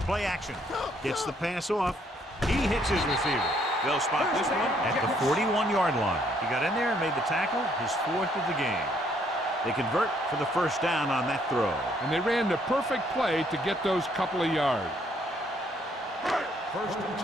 Play action. Gets the pass off. He hits his receiver. They'll spot this one at the 41-yard line. He got in there and made the tackle, his 4th of the game. They convert for the first down on that throw. And they ran the perfect play to get those couple of yards. First and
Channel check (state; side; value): normal; both; correlation 0.68